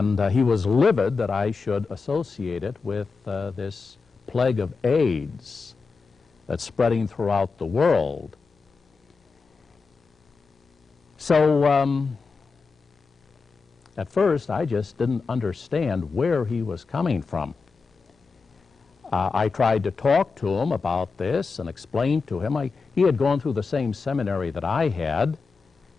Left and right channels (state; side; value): quieter; right; 4.6 dB